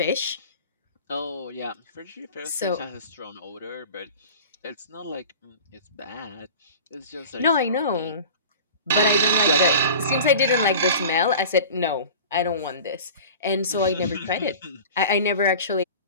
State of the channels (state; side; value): inverted; both; correlation -0.39